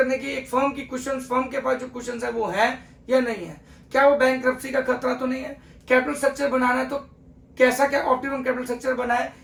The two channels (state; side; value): identical; both; correlation 1.00